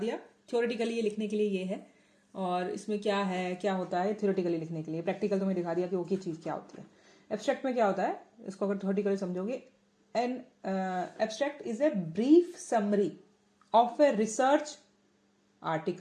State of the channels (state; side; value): identical; both; correlation 1.00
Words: थ्योरेटिकली ये लिखने के लिए ये है, और इसमें क्या है, क्या होता है थ्योरेटिकली लिखने के लिए। प्रैक्टिकल तुम्हें दिखा दिया कि वो की चीज़ क्या होती है। एब्स्ट्रैक्ट में क्या होता है, इसको अगर थ्योरेटिकली समझोगे, an abstract is a brief summary of a research